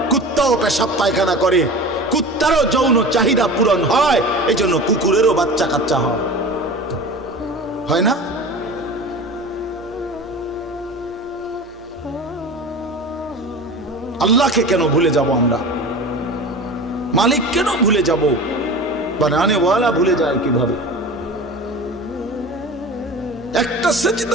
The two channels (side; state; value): both; normal; correlation 0.35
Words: কুত্তাও পেশাব পায়খানা করে, কুত্তারও যৌন চাহিদা পূরণ হয়, এই জন্য কুকুরেরও বাচ্চা কাচ্চা হয় না? আল্লাহকে কেন ভুলে যাব আমরা? মালিক কেন ভুলে যাব? বানানেওয়ালা ভুলে যায় কিভাবে? একটা